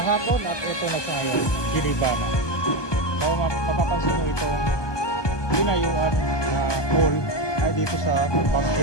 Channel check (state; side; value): late; right; 1.2 ms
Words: at ito na sa ngayon, giniba na. So mapapansin nyo itong ginayuan na mall ay dito sa